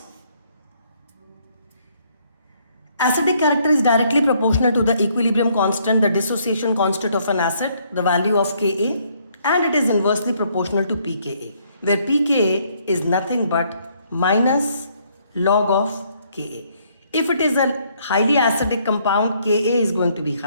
Acidic character is directly proportional to the equilibrium constant, the dissociation constant of an acid, the value of Ka, and it is inversely proportional to pKa, where pKa is nothing but minus log of Ka. If it is a highly acidic compound, Ka is going to be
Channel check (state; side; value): inverted; both; correlation -0.68